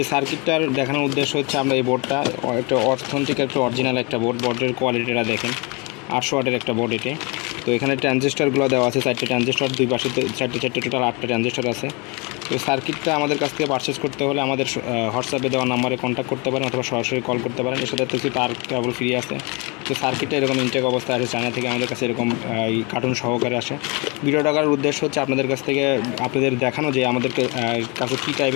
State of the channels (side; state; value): right; quieter; 29.2 dB